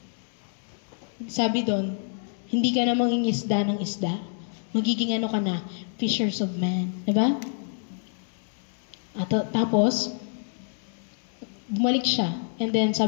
Sabi doon, hindi ka na mangingisda ng isda. Magiging ka na, fishers of men. Diba? At tapos, bumalik siya. And then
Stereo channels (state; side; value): silent; right; 60 dB below the other